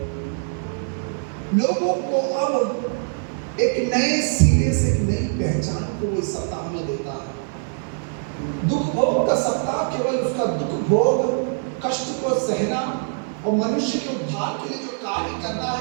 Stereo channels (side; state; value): left; silent; digital silence